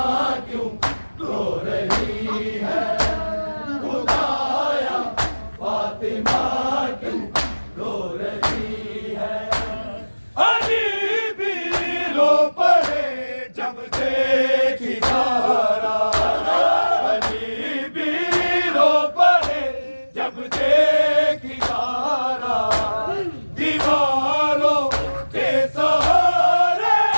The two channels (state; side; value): inverted; both; correlation -1.00